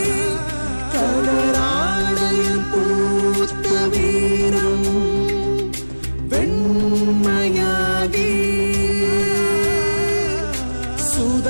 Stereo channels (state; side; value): inverted; both; correlation -1.00